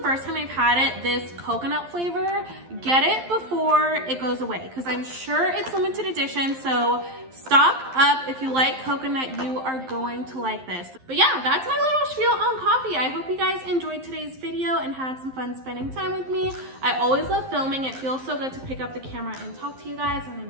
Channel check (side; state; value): left; late; 11 ms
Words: first time I've had it, this coconut flavor. Get it before it goes away because I'm sure it's limited edition. So stock up. If you like coconut, you are going to like this. But yeah, that's my little spiel on coffee. I hope you guys enjoyed today's video and had some fun spending time with me. I always love filming. It feels so good to pick up the camera and talk to you guys and